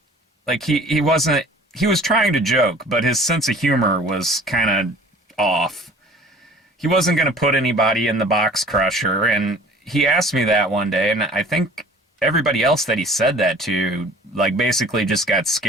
like he was trying to joke, but his sense of humor was kind of off. He wasn't going to put anybody in the box crusher. And he asked me that one day, and I think everybody else that he said that to, like, basically just got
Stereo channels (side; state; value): both; normal; correlation 0.48